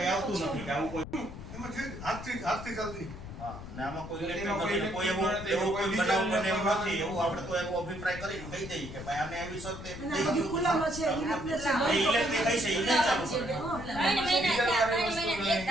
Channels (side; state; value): left; noise; rumble, 11 dB below the sound